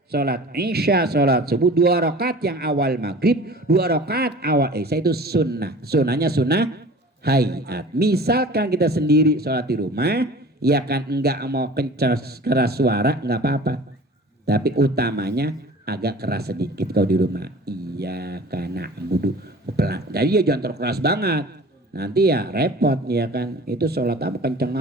sholat isya, sholat subuh 2 rakaat yang awal maghrib, 2 rakaat awal isya itu sunnah. Sunnahnya sunnah hayat. Misalkan kita sendiri sholat di rumah, ya kan enggak mau keras suara enggak apa-apa. Tapi utamanya agak keras sedikit kalau di rumah. Iya karena budu pelan. Jadi ya jangan terlalu keras banget. Nanti ya repot ya kan. Itu sholat apa kenceng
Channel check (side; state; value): both; normal; correlation 0.42